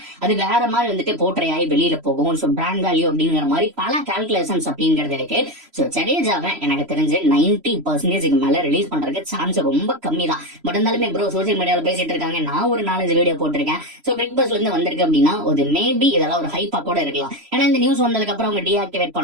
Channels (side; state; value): left; late; 3.0 ms